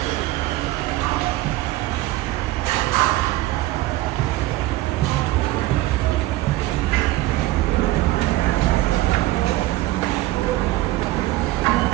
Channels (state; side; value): quieter; left; 17.3 dB